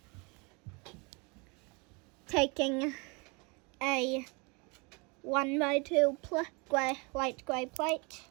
taking a 1x2 light grey plate,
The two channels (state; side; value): quieter; left; 29.9 dB